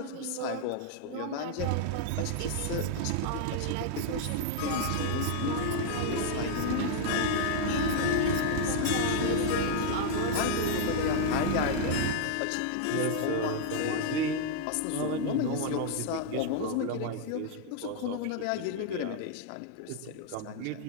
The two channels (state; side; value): different; both; correlation -0.01